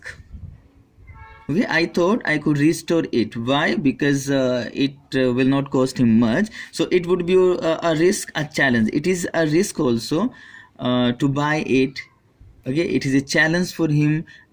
Okay, I thought I could restore it. Why? Because it will not cost him much. So it would be a risk, a challenge. It is a risk also to buy it. Okay, it is a challenge for him.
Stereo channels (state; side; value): identical; both; correlation 1.00